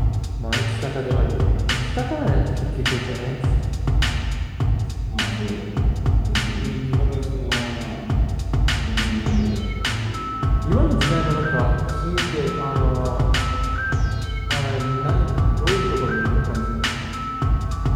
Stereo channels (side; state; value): both; identical; correlation 1.00